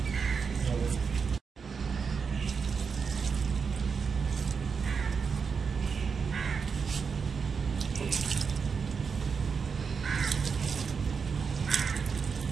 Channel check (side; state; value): left; quieter; 5.7 dB